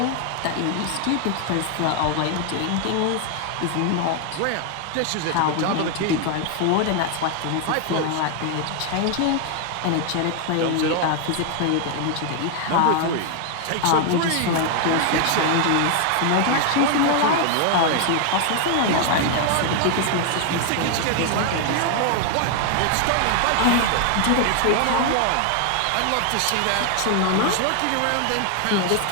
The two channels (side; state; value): both; different; correlation 0.00